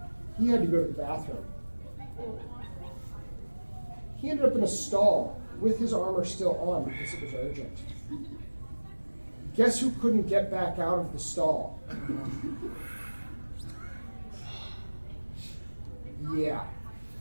He had to go to the bathroom. He ended up in a stall with his armor still on because it was urgent. Guess who couldn't get back out of the stall? Yeah.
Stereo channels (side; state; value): both; inverted; correlation -1.00